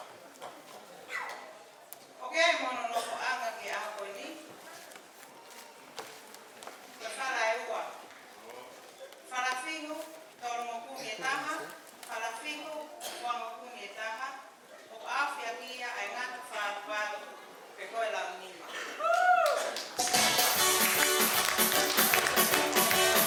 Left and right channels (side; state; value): both; identical; correlation 1.00